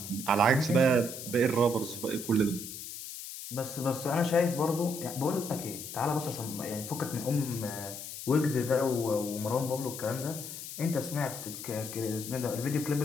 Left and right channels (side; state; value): left; noise; hiss, 9 dB below the sound